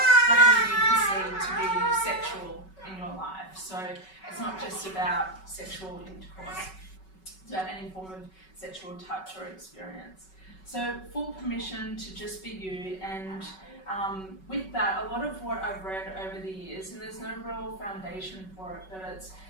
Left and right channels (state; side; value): late; right; 5.3 ms